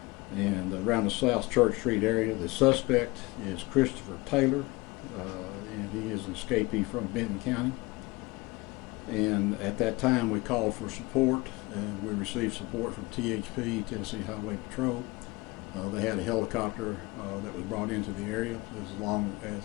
And around the South Church Street area, the suspect is Christopher Taylor, and he is an escapee from Benton County. And at that time, we called for support, and we received support from THP, Tennessee Highway Patrol. They had a helicopter that was brought into the area,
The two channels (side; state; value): right; quieter; 23.1 dB